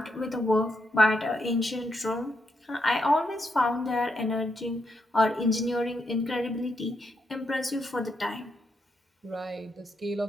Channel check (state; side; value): normal; both; correlation 0.81